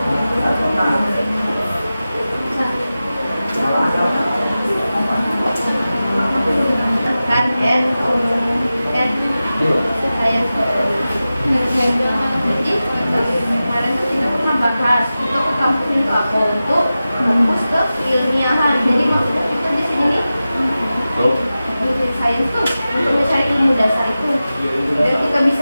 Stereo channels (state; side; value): inverted; both; correlation -0.94